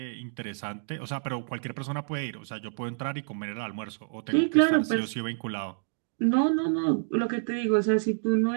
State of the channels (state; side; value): silent; left; digital silence